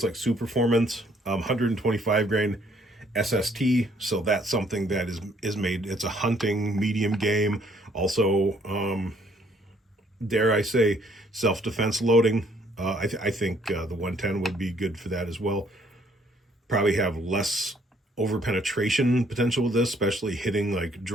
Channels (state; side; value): normal; both; correlation 0.65